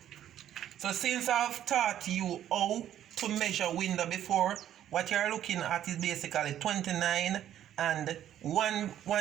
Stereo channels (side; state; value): left; quieter; 11.2 dB